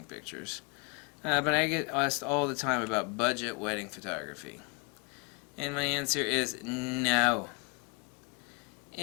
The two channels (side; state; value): right; quieter; 31.8 dB